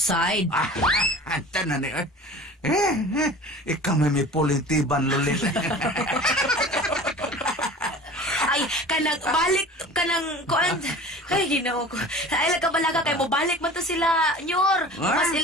Anta na ni. Ikaw may pulintiban, lulit. Ay, balik kanang kuan. Ay, ginoo ko. Ay, balaga kay mo balik man to sila, nyor. Mas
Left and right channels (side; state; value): both; normal; correlation 0.40